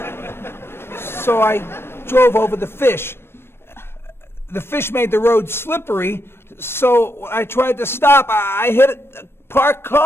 So I drove over the fish. The fish made the road slippery, so when I tried to stop, I hit a parked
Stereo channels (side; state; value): right; late; 0.12 ms